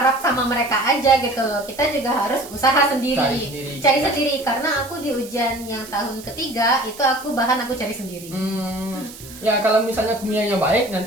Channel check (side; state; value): right; noise; hiss, 17 dB below the sound